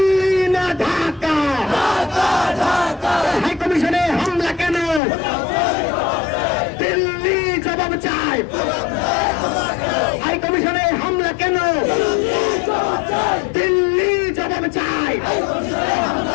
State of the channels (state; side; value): drops out; right; at 5.0 s